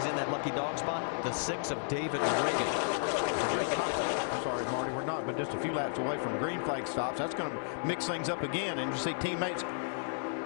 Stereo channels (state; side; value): silent; right; digital silence